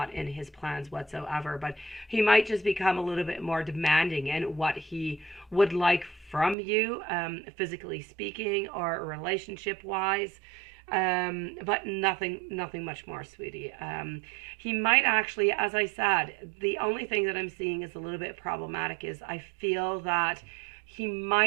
in his plans whatsoever, but he might just become a little bit more demanding in what he would like from you, physically speaking or relationship-wise. But nothing much more, sweetie. He might actually, as I said, the only thing that I'm seeing is a little bit problematic is I feel that he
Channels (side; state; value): left; drops out; at 6.6 s